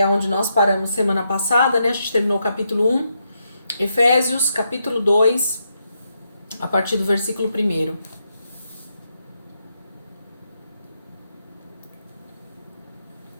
onde nós paramos semana passada, né? A gente terminou o capítulo 1. Efésios, capítulo 2, a partir do versículo 1.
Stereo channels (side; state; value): both; inverted; correlation -0.81